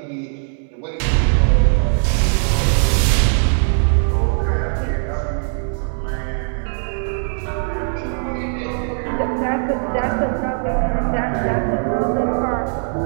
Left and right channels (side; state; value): left; silent; 60 dB below the other